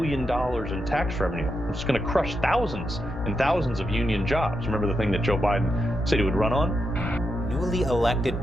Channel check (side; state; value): left; noise; rumble, 15 dB below the sound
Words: in tax revenue. It's going to crush thousands and thousands of union jobs. Remember the thing that Joe Biden said he would run on? Newly elected